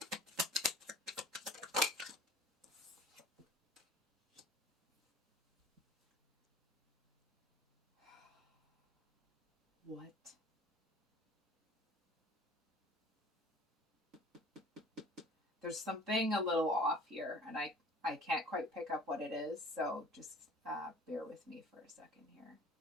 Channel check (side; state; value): both; normal; correlation 0.47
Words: What? There's something a little off here, and I can't quite pick up what it is, so just bear with me for a second here.